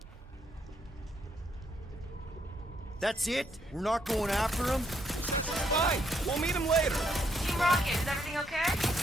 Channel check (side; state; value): both; normal; correlation 0.74